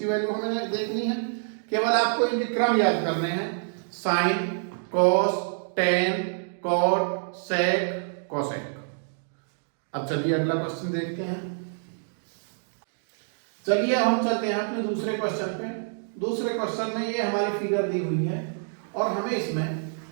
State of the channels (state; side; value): silent; left; digital silence